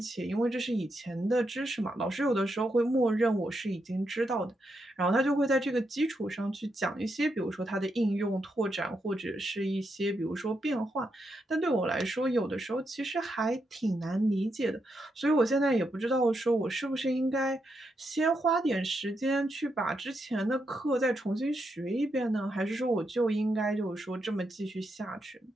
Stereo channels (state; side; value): normal; both; correlation 0.82